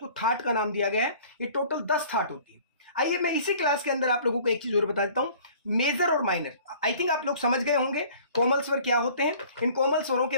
थाट का नाम दिया गया है। ये टोटल 10 थाट होती है। आइए मैं इसी क्लास के अंदर आप लोगों को एक चीज और बता देता हूं, मेजर और माइनर। आई थिंक आप लोग समझ गए होंगे कोमल स्वर क्या होते हैं। इन कोमल स्वरों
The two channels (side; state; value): both; inverted; correlation -0.50